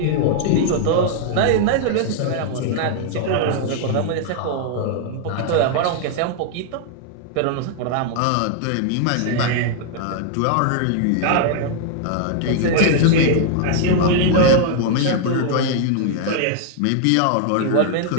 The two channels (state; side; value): different; both; correlation 0.00